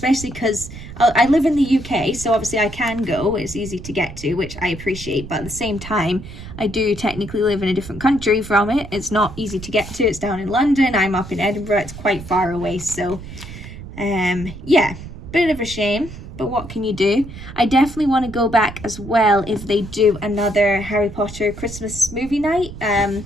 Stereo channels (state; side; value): noise; right; rumble, 13 dB below the sound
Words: because I live in the UK, so obviously I can go. It's easy to get to, which I appreciate, but at the same time, I do technically live in a different country from it. It's not easy to get to. It's down in London. I'm up in Edinburgh. It's quite far away, so yeah, bit of a shame, but what can you do? I definitely want to go back as well if they do another Harry Potter Christmas movie night.